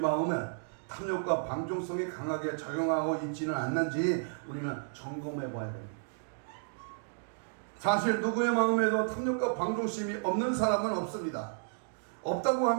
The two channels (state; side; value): silent; left; digital silence